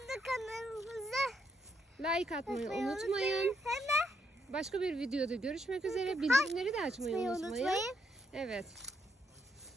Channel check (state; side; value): normal; both; correlation 0.75